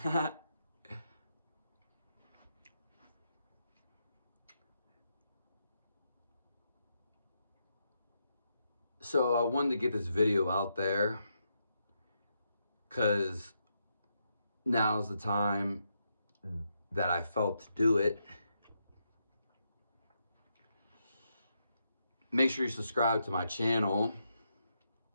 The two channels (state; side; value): inverted; both; correlation -0.82